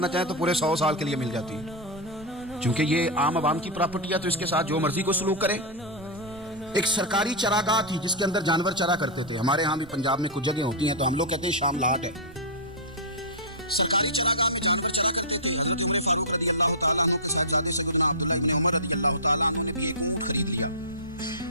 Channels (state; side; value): noise; right; rumble, 21 dB below the sound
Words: چاہیں تو پورے 100 سال کے لیے مل جاتی ہے. چونکہ یہ عام عوام کی پراپرٹی ہے تو اس کے ساتھ جو مرضی کو سلوک کرے. ایک سرکاری چراگاہ تھی جس کے اندر جانور چرا کرتے تھے. ہمارے ہاں بھی پنجاب میں کچھ جگہ ہوتی ہیں تو ہم لوگ کہتے ہیں شاملات ہے. سرکاری چراگاہ میں جانور چرا کرتے تھے. حضرت عمر فاروق رضی اللہ تعالیٰ عنہ کے ساتھ جاتے سیدنا عبداللہ ابن عمر رضی اللہ تعالیٰ عنہ نے بھی ایک اونٹ خرید لیا.